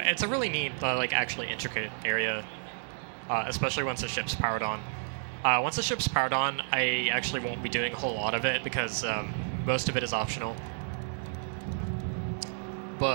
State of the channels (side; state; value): left; silent; digital silence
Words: a really neat, like actually intricate area, especially once the ship's powered on. Once the ship's powered on, I actually won't be doing a whole lot of it because most of it is optional.